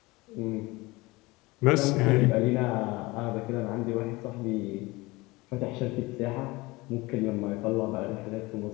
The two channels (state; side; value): quieter; right; 22.3 dB